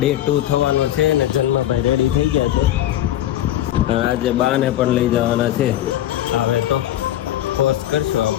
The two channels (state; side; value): quieter; right; 12.9 dB